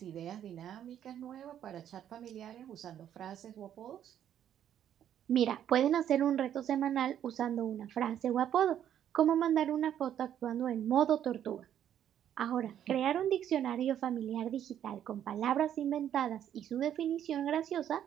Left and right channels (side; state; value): left; quieter; 10.2 dB